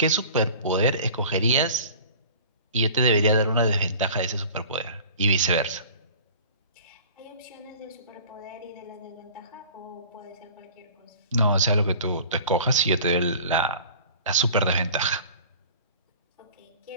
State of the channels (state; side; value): inverted; both; correlation -0.44